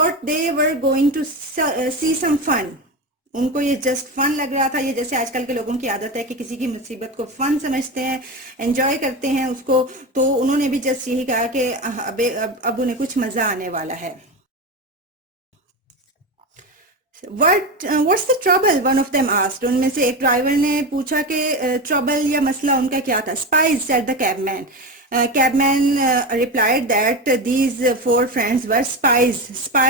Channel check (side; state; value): both; normal; correlation 0.21